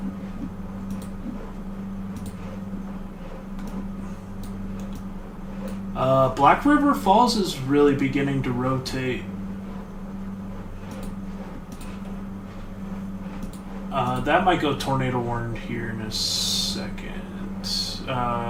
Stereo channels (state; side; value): identical; both; correlation 1.00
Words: Black River Falls is really beginning to rotate. That might go tornado warned here in a second.